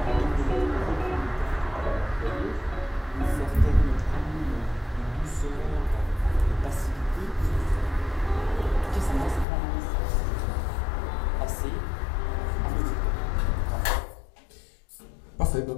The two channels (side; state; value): right; drops out; at 9.5 s